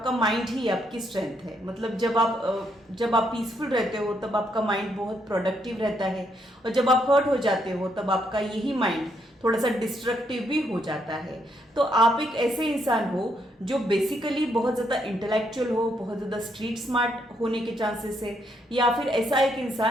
माइंड ही आपकी स्ट्रेंथ है। मतलब जब आप पीसफुल रहते हो तब आपका माइंड बहुत प्रोडक्टिव रहता है, और जब आप हर्ट हो जाते हो तब आपका यही माइंड थोड़ा सा डिस्ट्रक्टिव भी हो जाता है। तो आप एक ऐसे इंसान हो जो बेसिकली बहुत ज़्यादा इंटेलेक्चुअल हो, बहुत ज़्यादा स्ट्रीट स्मार्ट होने के चांसेस है, या फिर ऐसा एक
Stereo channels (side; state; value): both; normal; correlation 0.75